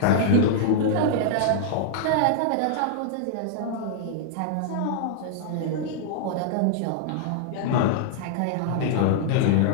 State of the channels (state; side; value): different; both; correlation -0.01